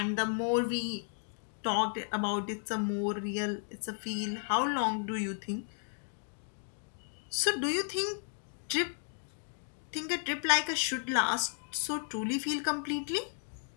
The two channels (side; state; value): right; silent; 55 dB below the other